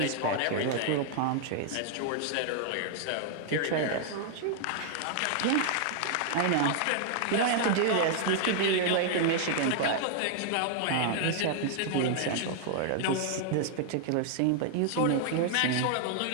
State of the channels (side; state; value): both; different; correlation -0.01